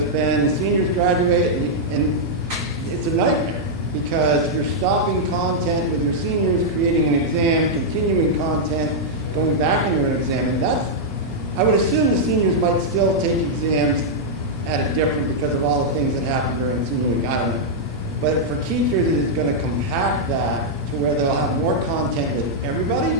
been seniors graduate, and it's a nightmare because you're stopping content with your seniors, creating an exam, continuing content, going back into an exam, and I would assume the seniors might still take exams at a different because of all the things that happen during senior week. I don't know. But for teachers, it is going to compact that to where they'll have more content with everybody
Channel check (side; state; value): both; normal; correlation -0.06